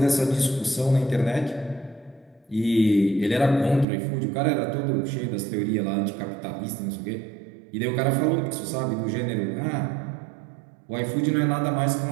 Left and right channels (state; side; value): drops out; left; at 3.9 s